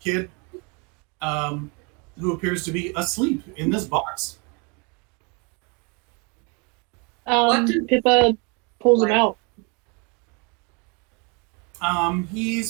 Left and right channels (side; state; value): left; quieter; 32.0 dB